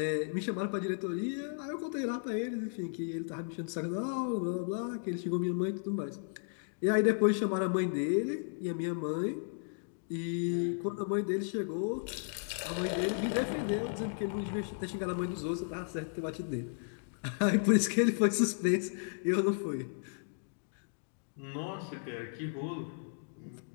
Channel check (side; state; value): right; silent; digital silence